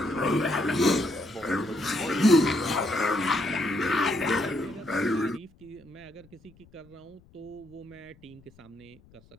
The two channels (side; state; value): left; noise; rumble, 27 dB below the sound